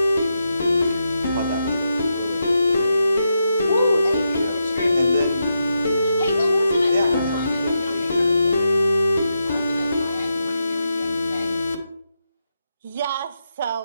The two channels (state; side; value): inverted; both; correlation -0.85